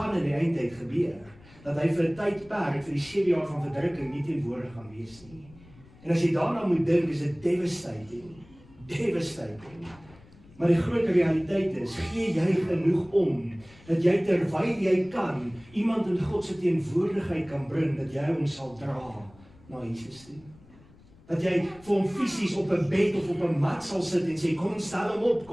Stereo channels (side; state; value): left; noise; rumble, 24 dB below the sound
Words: in die eindtyd gebeur. Dat hy vir 'n tydperk, vir die 7 jaar van verdrukking nie teenwoordig gaan wees nie. En as jy daarna moet dink, is dit devastating. Maar die groot realiteit is, gee jy genoeg om, dat jy terwyl jy kan, iemand in God se teenwoordigheid kan bring, dat jy hom sal dra na Jesus toe. Dat jy vir hom fisies op 'n bed of op 'n mat sal sit en sê, kom ons stel hom op,